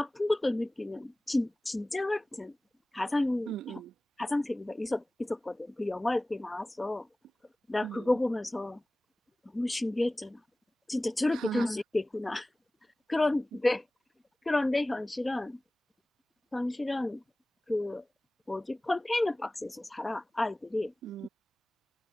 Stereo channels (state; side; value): normal; both; correlation 0.98